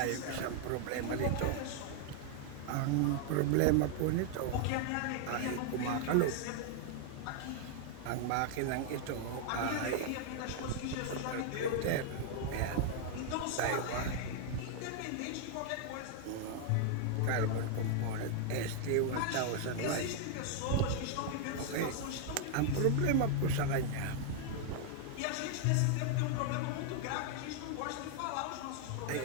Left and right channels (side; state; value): both; different; correlation 0.00